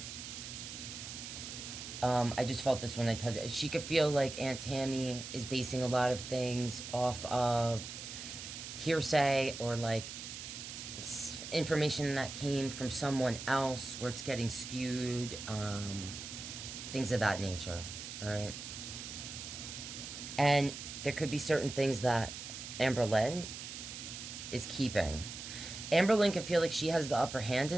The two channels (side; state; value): right; noise; hiss, 9 dB below the sound